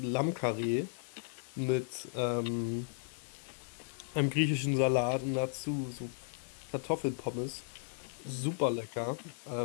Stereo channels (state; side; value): silent; right; digital silence